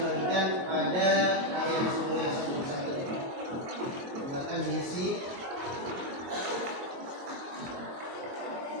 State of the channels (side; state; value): left; late; 22 ms